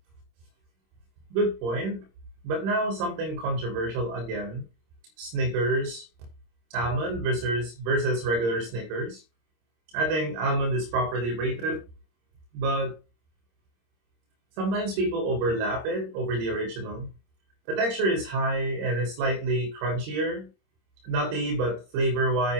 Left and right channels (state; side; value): late; left; 26 ms